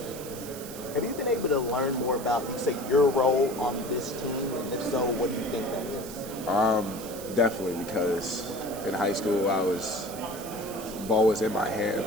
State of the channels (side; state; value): right; noise; hiss, 13 dB below the sound